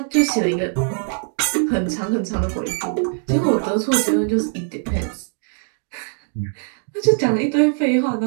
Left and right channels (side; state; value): left; silent; 58 dB below the other